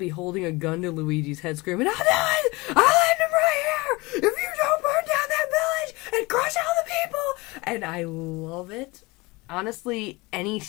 holding a gun to Luigi's head screaming, I'll do it! I'll end him right here! If you don't burn down that village and crush all the people! And I love it. Honestly, any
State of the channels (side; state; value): right; quieter; 24.0 dB